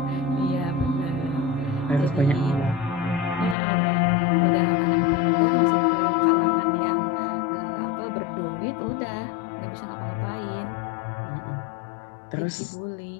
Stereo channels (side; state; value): right; drops out; at 3.6 s